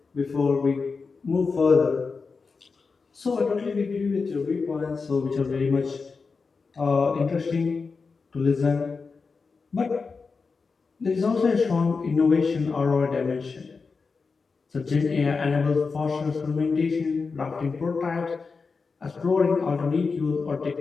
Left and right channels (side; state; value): right; quieter; 4.7 dB